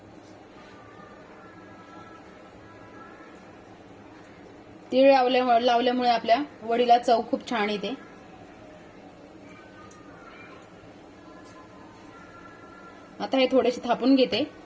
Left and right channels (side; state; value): both; identical; correlation 1.00